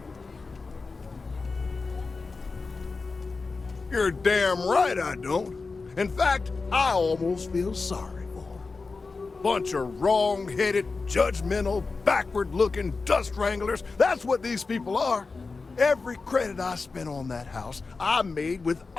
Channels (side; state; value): right; quieter; 4.1 dB